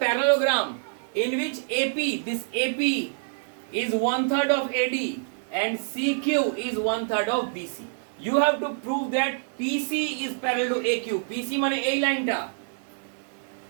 parallelogram in which AP, this AP is 1/3 of AD and CQ is 1/3 of BC. You have to prove that PC is parallel to AQ. PC মানে এই লাইনটা,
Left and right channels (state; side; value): silent; left; digital silence